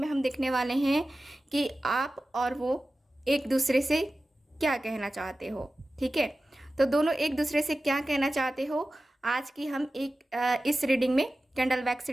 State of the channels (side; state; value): both; normal; correlation 0.95